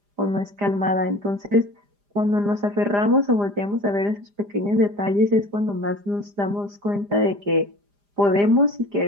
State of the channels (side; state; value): left; late; 4.9 ms